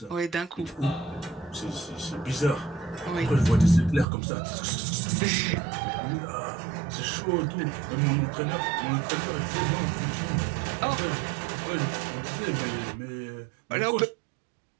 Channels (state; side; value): drops out; left; at 4.0 s